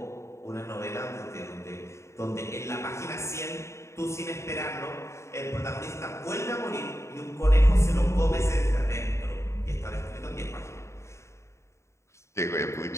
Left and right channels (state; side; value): late; right; 0.14 ms